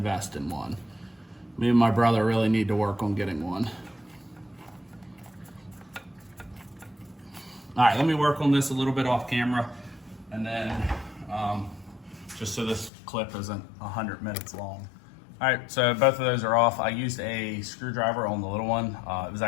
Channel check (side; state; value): right; drops out; at 12.9 s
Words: in one. Me and my brother really need to work on getting one. All right, let me work on this a little bit off camera, and then just so this clip isn't 100 minutes long. All right, so both of those are off. I used a screwdriver on the little one. It was